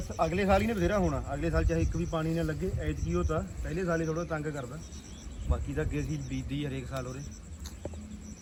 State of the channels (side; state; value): both; identical; correlation 1.00